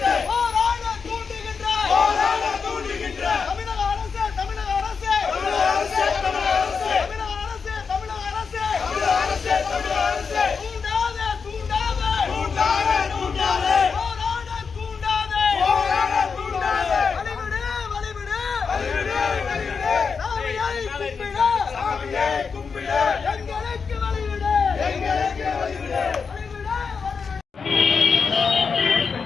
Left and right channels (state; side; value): quieter; right; 5.5 dB